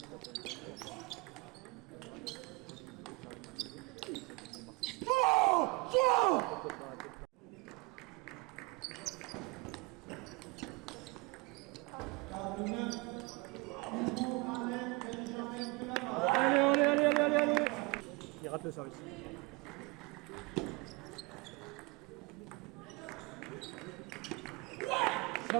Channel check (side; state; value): left; quieter; 27.0 dB